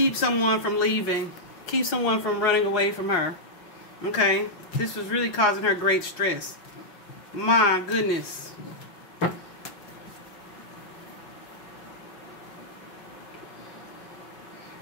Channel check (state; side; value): late; right; 6.0 ms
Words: someone from leaving. Keep someone from running away from her. Okay? This was really causing her great stress. My goodness.